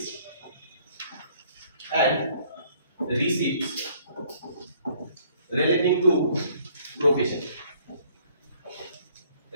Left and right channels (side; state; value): both; inverted; correlation -0.61